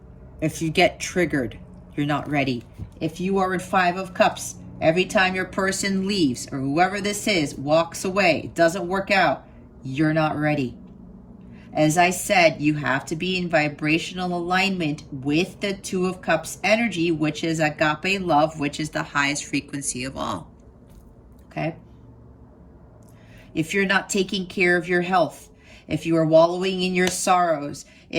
If you get triggered, you're not ready. If you are in 5 of Cups, every time your person leaves or whoever this is walks away, doesn't work out, you're not ready. As I said, you have to be in vibrational alignment with the 2 of Cups energy, which is agape love, which is the highest frequency of all. Okay? If you're not taking care of your health, if you are wallowing in your sorrows,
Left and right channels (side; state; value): both; identical; correlation 1.00